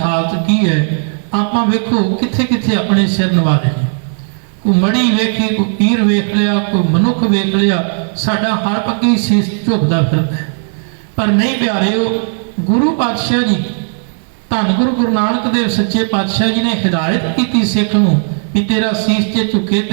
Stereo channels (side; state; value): left; silent; digital silence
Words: ਕੀ ਹੈ? ਆਪਾਂ ਵੇਖੋ ਕਿੱਥੇ ਕਿੱਥੇ ਆਪਣੇ ਸਿਰ ਨਵਾ ਦੇਣੇ। ਕੋਈ ਮੜੀ ਵੇਖੀ, ਕੋਈ ਪੀਰ ਵੇਖ ਲਿਆ, ਕੋਈ ਮਨੁੱਖ ਵੇਖ ਲਿਆ, ਸਾਡਾ ਹਰ ਪੱਕੀ ਸੀਸ ਝੁਕਦਾ ਫਿਰਦਾ। ਪਰ ਨਹੀਂ ਪਿਆਰਿਓ, ਗੁਰੂ ਪਾਤਸ਼ਾਹ ਜੀ, ਧੰਨ ਗੁਰੂ ਨਾਨਕ ਦੇਵ ਸੱਚੇ ਪਾਤਸ਼ਾਹ ਜੀ ਨੇ ਹਿਦਾਇਤ ਕੀਤੀ ਸਿੱਖ ਨੂੰ ਵੀ ਤੇਰਾ ਸੀਸ ਜੇ ਝੁਕੇ